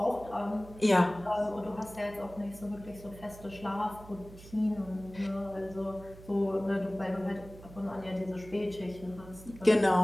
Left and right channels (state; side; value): noise; right; hum, 17 dB below the sound